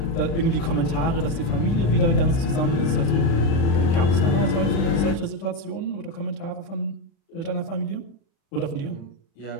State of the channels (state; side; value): late; right; 36 ms